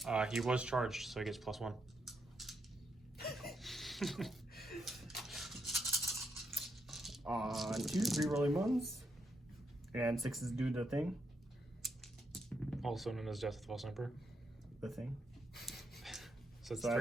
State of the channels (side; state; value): both; normal; correlation 0.80